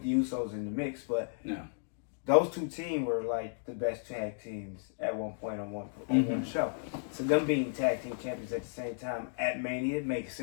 the Usos in the mix, but those two teams were the best tag teams at one point on one show. So them being tag team champions at the same time at Mania makes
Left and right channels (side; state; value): right; silent; digital silence